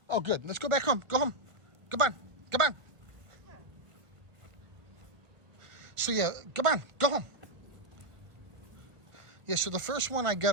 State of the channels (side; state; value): left; late; 1.5 ms